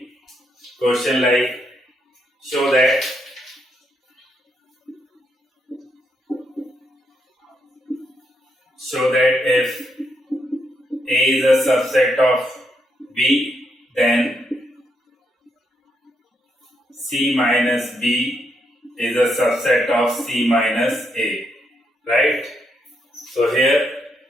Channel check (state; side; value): normal; both; correlation 0.78